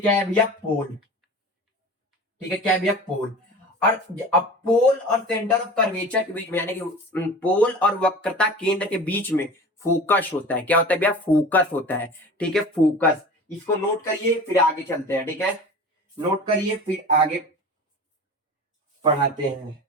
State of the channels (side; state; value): both; normal; correlation 0.37